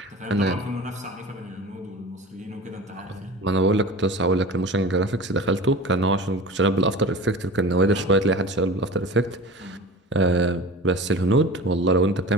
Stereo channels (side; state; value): both; normal; correlation 0.36